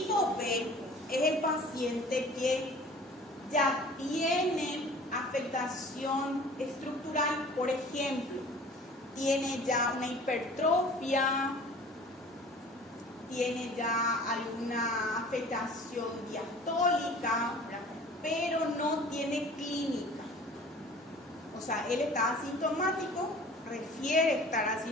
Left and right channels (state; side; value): normal; both; correlation 0.46